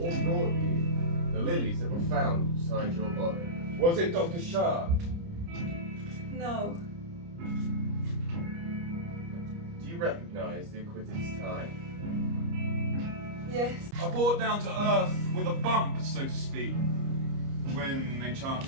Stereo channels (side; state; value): left; late; 29 ms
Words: brought you the lilies that were found beside your body? Was it Dr. Schaad? No. Do you recognize the acquitted's tie? Yes. I brought down to earth with a bump, so to speak, when they